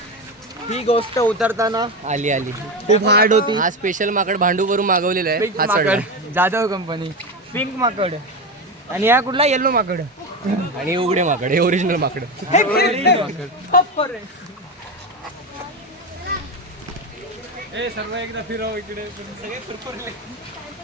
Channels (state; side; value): normal; both; correlation 0.17